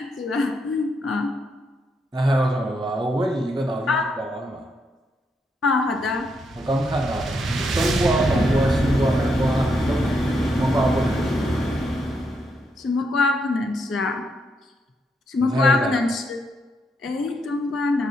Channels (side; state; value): both; normal; correlation 0.79